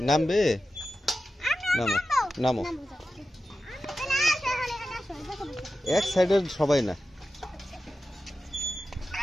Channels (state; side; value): normal; both; correlation 0.93